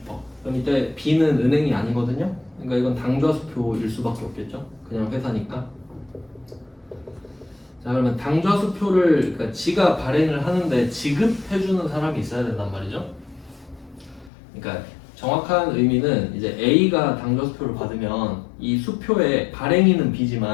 그럼 이때 B는 은행이 아니거든요. 그러니까 이건 당좌수표일 수밖에 없겠죠. 그냥 회사니까. 자, 그러면 당좌수표를 그러니까 지가 발행을 하는데 지급해주는 사람이 있어야 된단 말이죠. 그러니까 정확한 의미는 이제 A가 당좌수표를 받으면 이 수표의 발행인은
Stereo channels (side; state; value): right; drops out; at 14.3 s